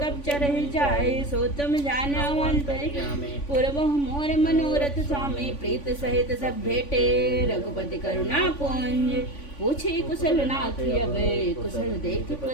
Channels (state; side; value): late; right; 3.5 ms